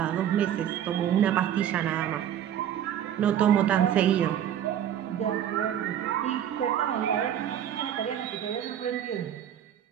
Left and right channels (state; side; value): quieter; left; 10.1 dB